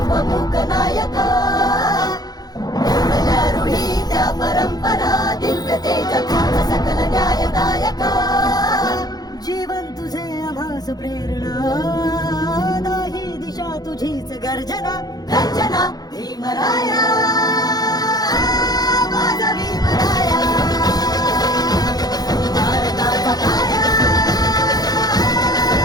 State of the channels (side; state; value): right; late; 0.19 ms